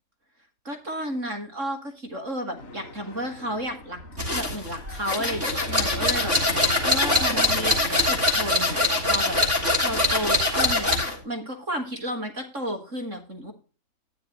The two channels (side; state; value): left; late; 3.5 ms